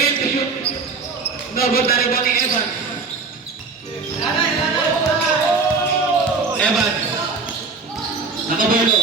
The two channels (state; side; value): quieter; left; 4.5 dB